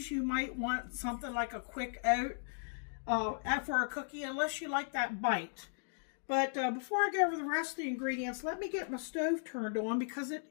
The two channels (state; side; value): silent; right; digital silence